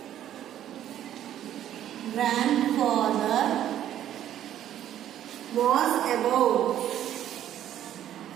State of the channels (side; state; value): left; quieter; 11.4 dB